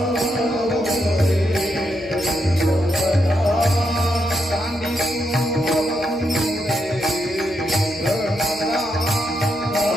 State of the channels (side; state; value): left; noise; hum, 25 dB below the sound